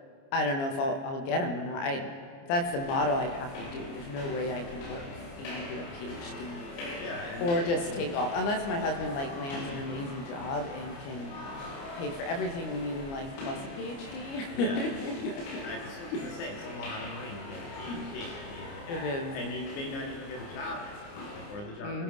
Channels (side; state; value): right; late; 29 ms